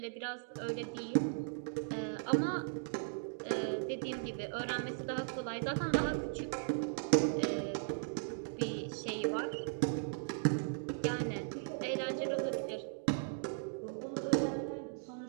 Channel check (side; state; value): left; silent; digital silence